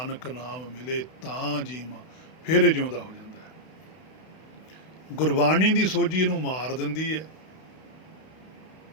ਨਾਮ ਮਿਲੇ ਤਾਂ ਜੀਵਾਂ, ਫਿਰ ਇਹ ਜਿਉਂਦਾ ਹੋ ਜਾਂਦਾ। ਗੁਰਬਾਣੀ ਦੀ ਸੋਝੀ ਇਹਨੂੰ ਮਾਰ ਦਿੰਦੀ ਹੈ।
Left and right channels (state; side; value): late; right; 32 ms